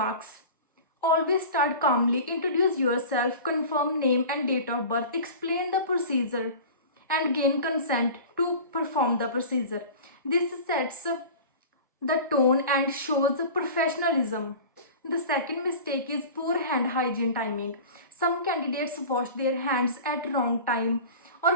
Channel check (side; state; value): both; inverted; correlation -0.37